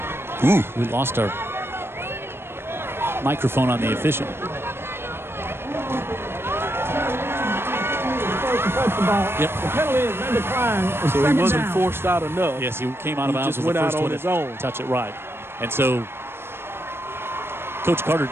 Ooh. We lost our microphone on the official. Yep. The penalty is they decline. So he wasn't forced out enough. Yes, he came out of bounds. Just went out on his own. Touch it right. And so Coach Carter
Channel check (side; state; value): left; late; 0.11 ms